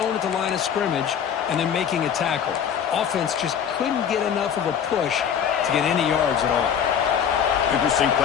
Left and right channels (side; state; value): right; quieter; 8.2 dB